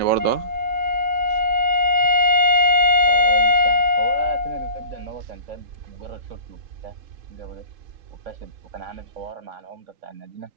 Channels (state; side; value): late; left; 3.8 ms